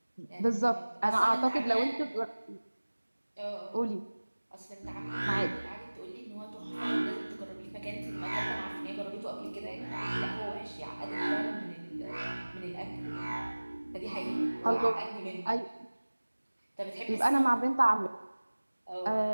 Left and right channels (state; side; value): inverted; both; correlation -1.00